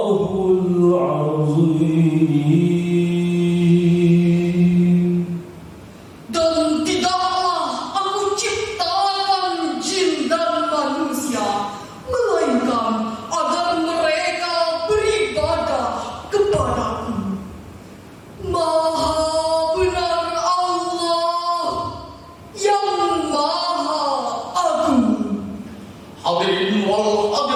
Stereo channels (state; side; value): identical; both; correlation 1.00